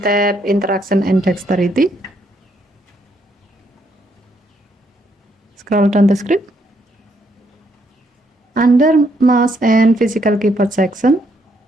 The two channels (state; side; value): normal; both; correlation 0.73